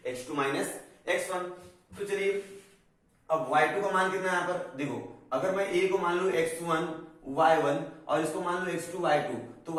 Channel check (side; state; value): both; identical; correlation 1.00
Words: x2 माइनस x1। तो चलिए अब y2 का मान कितना है यहाँ पर देखो, अगर मैं A को मान लू x1 y1 और इसको मान लो x2 y2, तो